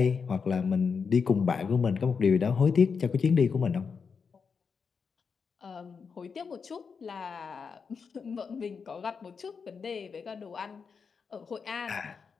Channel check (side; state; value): right; quieter; 5.7 dB